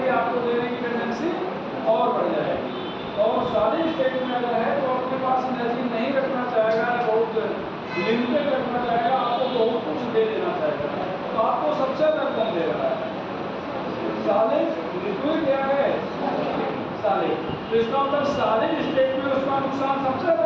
आपको देने की टेंडेंसी और बढ़ जाएगी। और सॉलिड स्टेट में अगर है तो अपने पास एनर्जी नहीं रखना चाहेगा, बहुत लिमिटेड रखना चाहेगा, आपको बहुत कुछ दे देना चाहेगा, तो आपको सबसे ज़्यादा कम दे रहा है। सॉलिड, लिक्विड क्या है? सॉलिड। तो इसका मतलब सॉलिड स्टेट में उसका नुकसान सबसे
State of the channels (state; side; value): identical; both; correlation 1.00